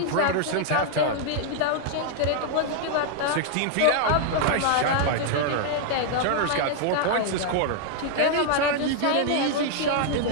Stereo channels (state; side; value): different; both; correlation 0.00